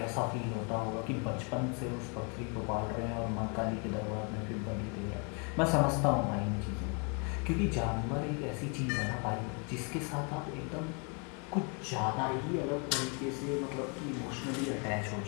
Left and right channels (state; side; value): quieter; right; 35.8 dB